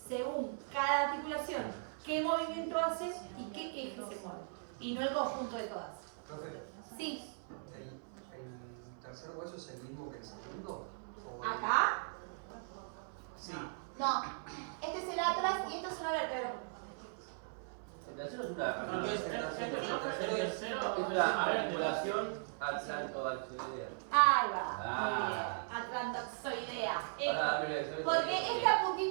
según cada articulación, qué movimiento hace y qué eje se mueve. Y no el conjunto de todas. Profe, Sí. ¿el tercer hueso es el mismo que el segundo? ¿O- ¿Acá? Sí. No. Este es el atlas y esta es una vértebra. La tercera es una articulación atlantoaxilar. Ahí va. Muy bien. Atlantoxoidea. Ahora, Porque esta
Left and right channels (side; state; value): left; silent; 52 dB below the other